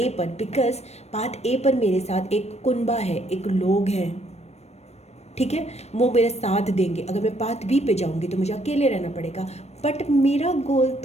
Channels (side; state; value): right; late; 0.31 ms